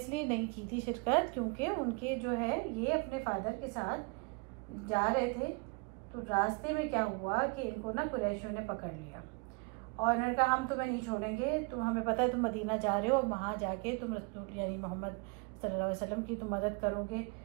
नहीं की थी शिरकत क्योंकि उनके जो है ये अपने फादर के साथ जा रहे थे, तो रास्ते में क्या हुआ कि इनको ना कुरैशियों ने पकड़ लिया, और उन्होंने कहा हम तुम्हें नहीं छोड़ेंगे, तुम, हमें पता है तुम मदीना जा रहे हो, और वहाँ जाके तुम रसूल यानी मोहम्मद सल्लल्लाहु अलैहि वसल्लम की तुम मदद करोगे,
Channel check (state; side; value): quieter; left; 30.7 dB